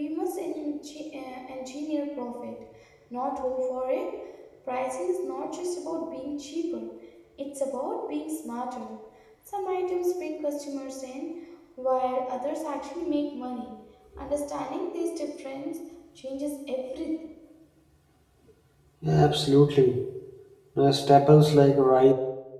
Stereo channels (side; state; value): both; identical; correlation 1.00